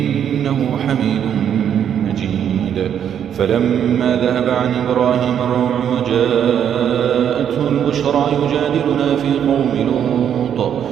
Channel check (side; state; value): left; quieter; 9.0 dB